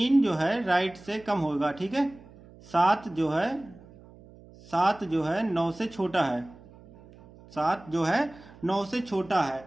जो है राइट से कम होगा, ठीक है, 7 जो है 9 से छोटा है, 7 जो है 9 से छोटा है,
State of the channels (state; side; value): noise; right; hum, 22 dB below the sound